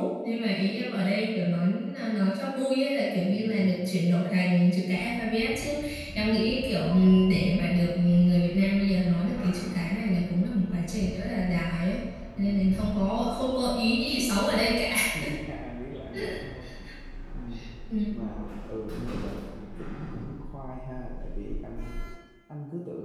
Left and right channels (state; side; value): identical; both; correlation 1.00